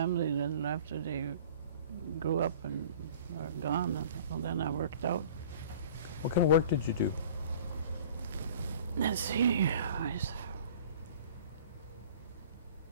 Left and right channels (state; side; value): inverted; both; correlation -0.46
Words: then after they grew up and are gone, then I worked out. What kind of work did you do? Let's see. I